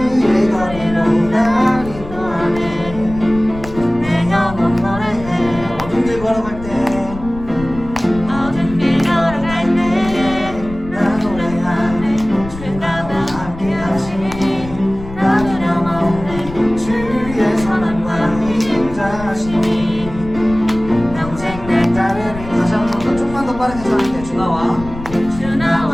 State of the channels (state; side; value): noise; left; rumble, 13 dB below the sound